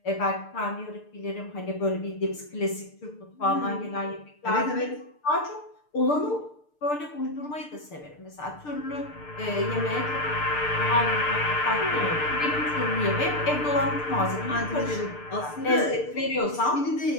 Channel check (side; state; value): right; late; 6.7 ms